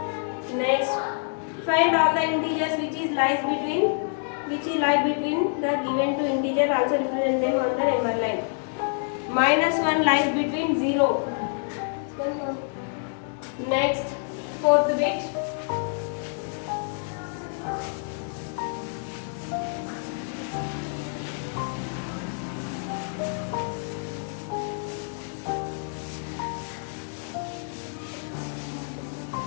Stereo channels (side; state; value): right; silent; 60 dB below the other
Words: Next, find all the integers which lie between the given two integer. Also represent them on the number line. -1 lies between 0. Next, fourth bit.